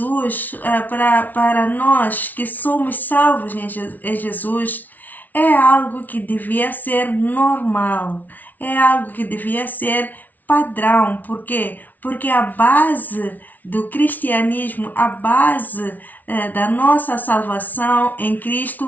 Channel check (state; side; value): late; right; 0.079 ms